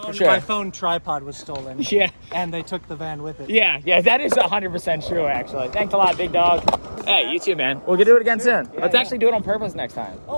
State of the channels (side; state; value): both; inverted; correlation -1.00